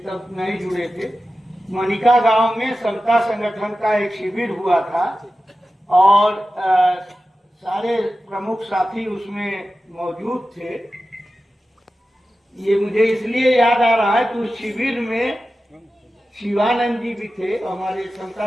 तब नहीं जुड़े थे। मनिका गांव में समता संगठन का एक शिविर हुआ था और सारे प्रमुख साथी उसमें मौजूद थे। ये मुझे इसलिए याद आ रहा है कि उस शिविर में शिवानंद जी भी थे, हमारे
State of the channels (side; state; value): both; normal; correlation 0.94